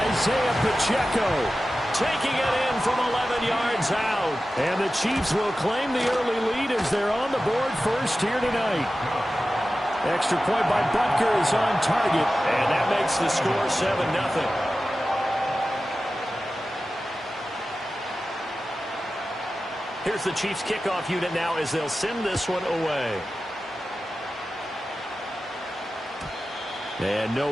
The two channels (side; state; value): both; normal; correlation 0.94